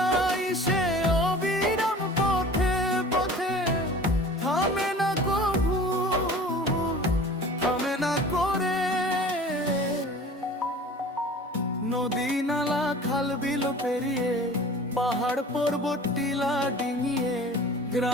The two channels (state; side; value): normal; both; correlation 0.42